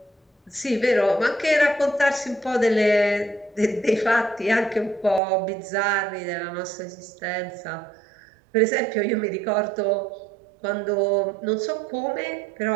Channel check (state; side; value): drops out; left; at 5.2 s